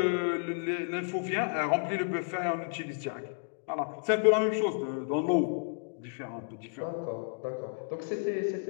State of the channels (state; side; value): silent; right; digital silence